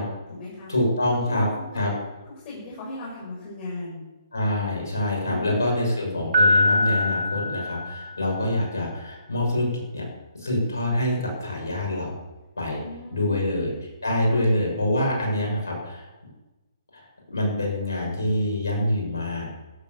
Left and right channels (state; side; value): inverted; both; correlation -0.72